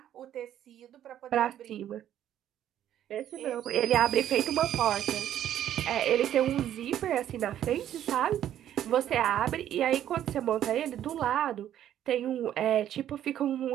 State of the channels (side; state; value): left; quieter; 11.1 dB